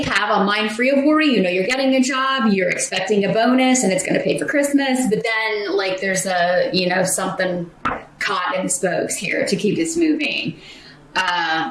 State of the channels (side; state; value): both; identical; correlation 1.00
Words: have a mind free of worry. You're getting a job, you're expecting a bonus, and it's going to pay for Christmas. But then, there's a, something caught in the spokes here to keep this moving.